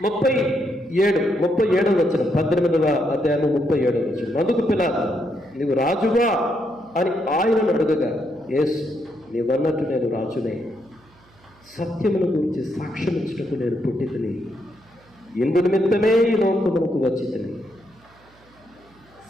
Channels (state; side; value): noise; right; hum, 29 dB below the sound